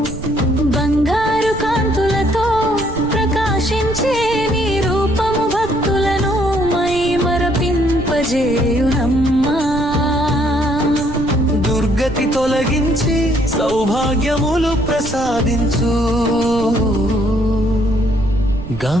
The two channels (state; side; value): noise; right; rumble, 11 dB below the sound